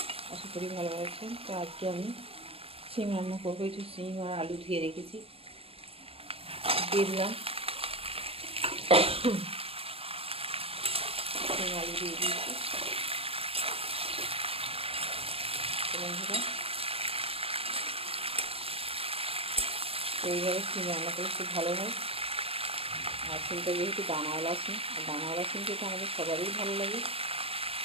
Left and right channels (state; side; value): late; left; 0.28 ms